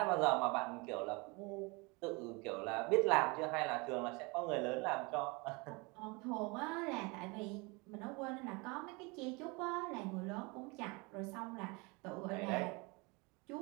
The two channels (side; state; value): left; quieter; 27.9 dB